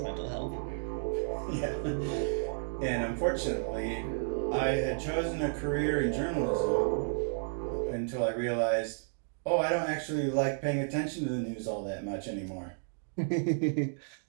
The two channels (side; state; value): left; silent; digital silence